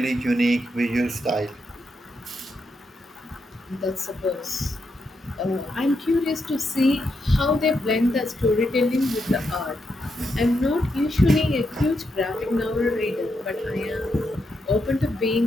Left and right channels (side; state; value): both; normal; correlation 0.83